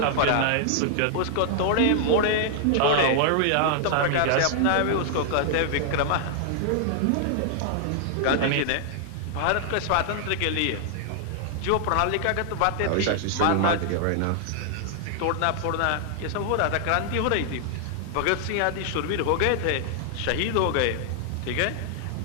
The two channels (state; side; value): different; both; correlation 0.00